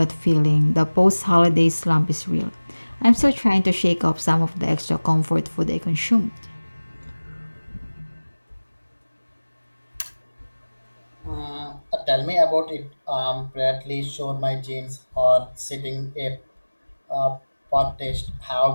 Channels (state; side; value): inverted; both; correlation -1.00